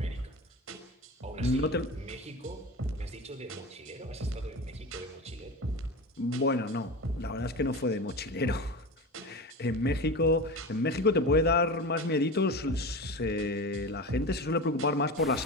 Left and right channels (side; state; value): both; normal; correlation 0.27